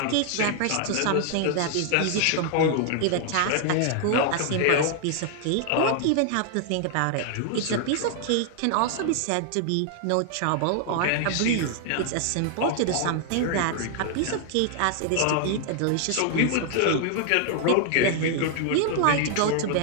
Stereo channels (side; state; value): both; different; correlation 0.00